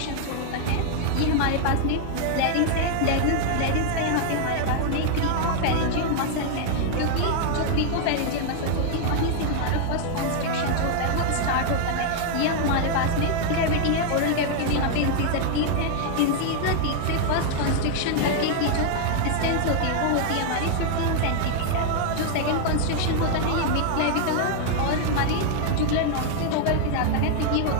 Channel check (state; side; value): different; both; correlation 0.00